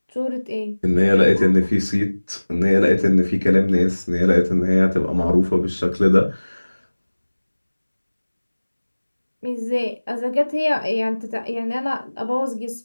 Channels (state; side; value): inverted; both; correlation -1.00